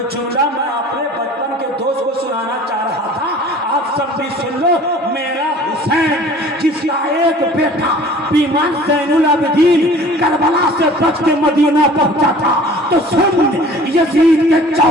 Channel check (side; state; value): both; normal; correlation 0.47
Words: جملہ میں اپنے بچپن کے دوست کو سنانا چاہ رہا تھا آپ سب بھی سن لو۔ میرا حسین جس کا ایک بیٹا بیمار زین العابدین کربلا سے بچ کے مدینہ پہنچا تھا، تو سن یزید کے